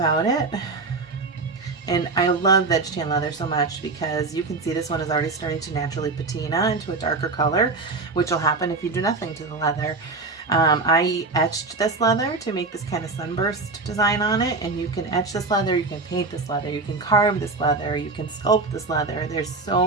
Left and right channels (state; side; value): quieter; left; 3.7 dB